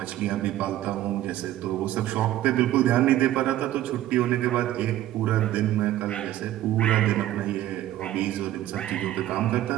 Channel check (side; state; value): left; quieter; 13.7 dB